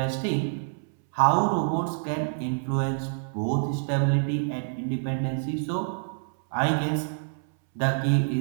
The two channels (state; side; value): silent; left; 60 dB below the other